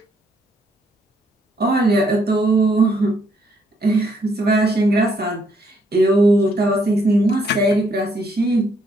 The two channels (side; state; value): both; normal; correlation 0.71